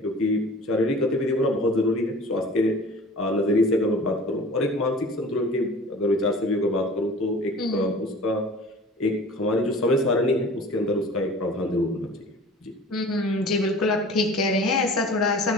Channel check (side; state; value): both; normal; correlation 0.43